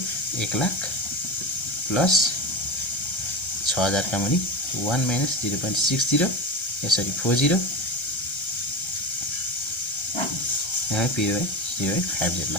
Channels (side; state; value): right; late; 1.3 ms